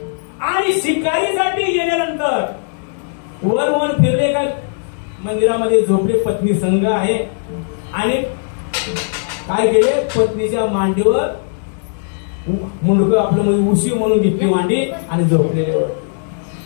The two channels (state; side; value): silent; right; digital silence